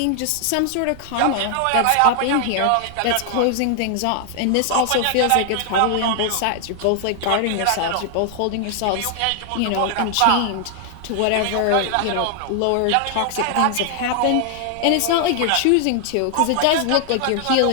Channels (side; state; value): both; different; correlation 0.00